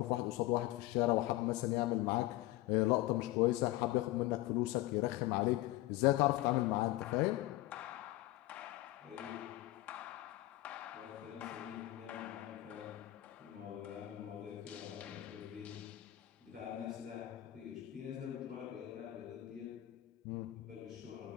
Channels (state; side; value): quieter; right; 16.7 dB